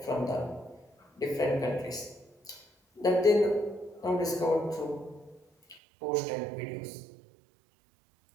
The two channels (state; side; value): drops out; left; at 5.8 s